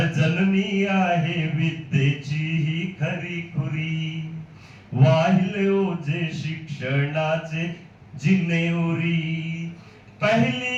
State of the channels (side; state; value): both; identical; correlation 1.00